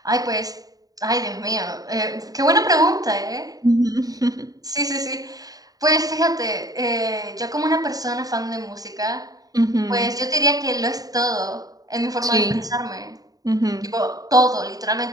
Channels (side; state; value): left; late; 0.18 ms